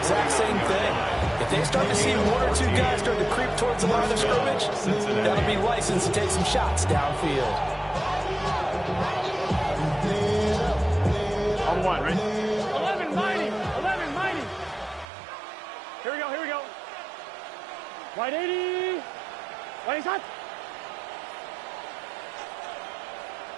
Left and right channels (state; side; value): drops out; left; at 15.1 s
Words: same thing. If they start to see one or two guys start to creep towards the line of scrimmage, that'll be licensed to take some shots downfield. On one, right? 11 mighty. 11 mighty. Here we go. Here we go. Wide 80. Wide shot.